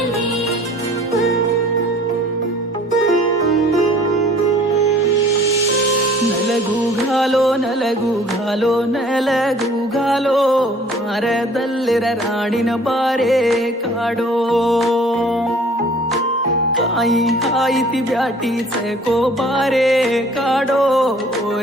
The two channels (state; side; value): normal; both; correlation 0.52